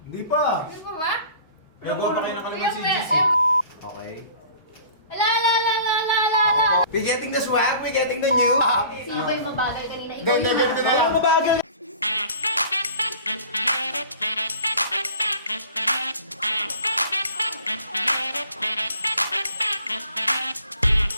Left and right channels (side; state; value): both; inverted; correlation -0.47